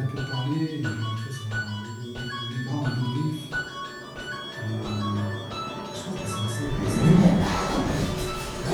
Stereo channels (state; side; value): identical; both; correlation 1.00